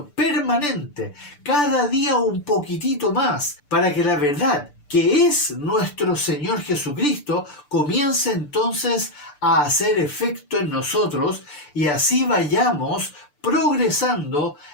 permanente, cada día un poquitito más, para que la verdad, que es nuestro Señor Jesucristo, comience entonces a hacer efecto en nosotros y así vayamos progresando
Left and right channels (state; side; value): late; right; 6.8 ms